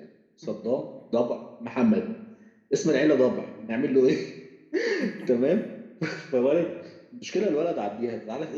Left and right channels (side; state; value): both; identical; correlation 1.00